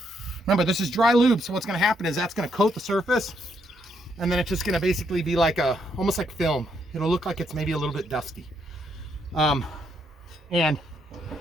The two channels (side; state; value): both; normal; correlation 0.75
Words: Remember, this is dry lube, so what's going to happen is that's going to coat the surface, and then it's just going to basically be like almost like film. It'll look like it's maybe a little bit dusty. And